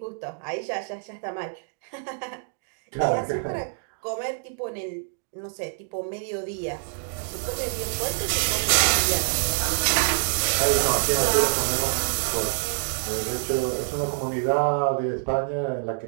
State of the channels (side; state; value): left; silent; digital silence